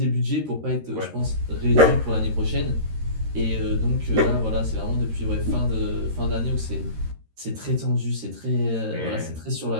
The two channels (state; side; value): late; left; 13 ms